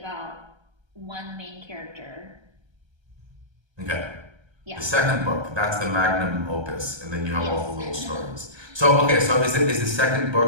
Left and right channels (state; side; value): late; left; 1.3 ms